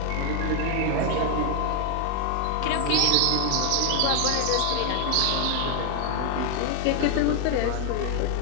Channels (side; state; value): both; different; correlation 0.01